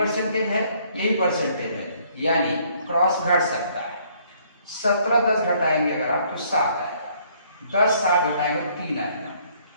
है, ये भी परसेंटेज है, यानी क्रॉस घट सकता है। 17 10 घटाएंगे अगर आप तो 7 आएगा, 10 7 घटाएंगे तो 3 आएगा,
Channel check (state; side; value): inverted; both; correlation -0.64